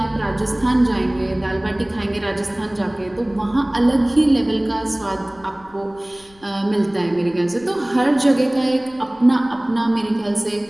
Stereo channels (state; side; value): noise; left; rumble, 27 dB below the sound